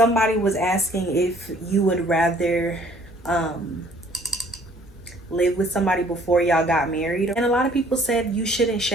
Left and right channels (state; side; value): normal; both; correlation 0.58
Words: was asking if you would rather live with somebody before y'all got married. And a lot of people said you shouldn't